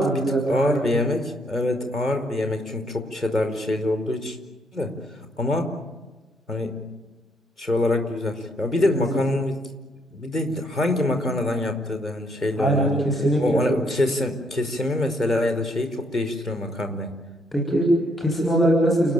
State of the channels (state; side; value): normal; both; correlation 0.71